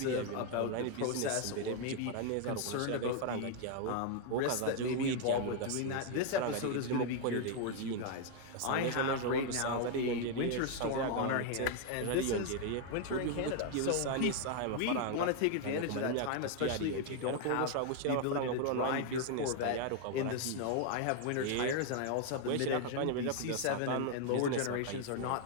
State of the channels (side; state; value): both; different; correlation 0.00